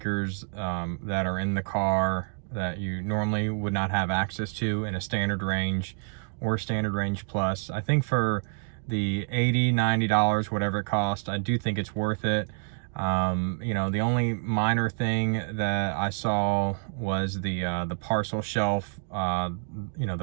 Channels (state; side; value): silent; left; 60 dB below the other